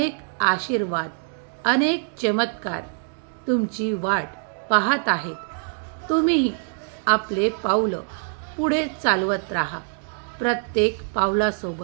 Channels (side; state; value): left; silent; 57 dB below the other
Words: आशीर्वाद, अनेक चमत्कार तुमची वाट पाहत आहेत. तुम्हीही आपले पावलं पुढे चालवत राहा. प्रत्येक